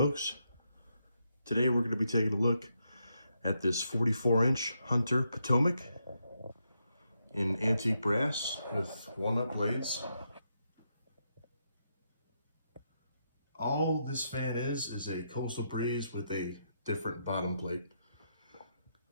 today we're going to be taking a look at this 44-inch Hunter Potomac in antique brass with walnut blades. All this fan is a Coastal Breeze with a different bottom plate.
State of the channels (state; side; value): inverted; both; correlation -0.81